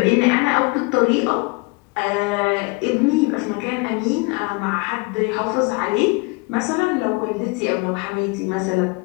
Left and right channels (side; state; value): right; quieter; 28.5 dB